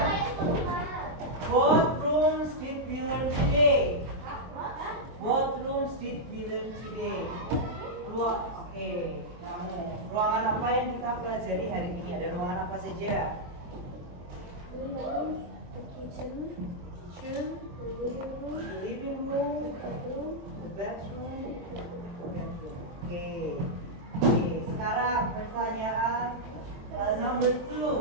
What rooms did we learn today? What rooms did we learn today? Oke, kamu. Ruangan apa yang kita pelajari hari ini? Ada ruangan apa saja? The kitchen, the living room, the bedroom. Oke. Oke, sekarang pertanyaan number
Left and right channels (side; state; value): left; late; 23 ms